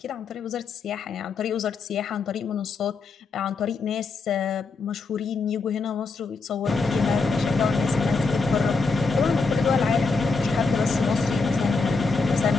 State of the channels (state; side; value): quieter; right; 4.2 dB